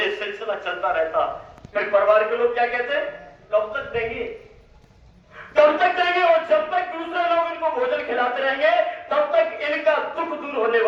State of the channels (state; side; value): identical; both; correlation 1.00